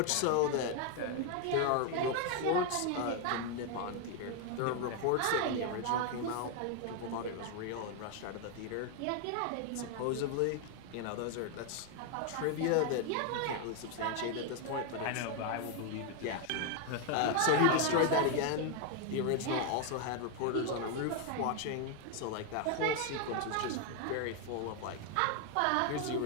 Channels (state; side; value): different; both; correlation 0.01